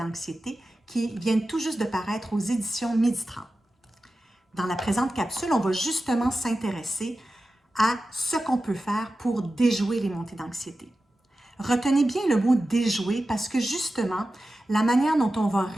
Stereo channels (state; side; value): normal; both; correlation 0.94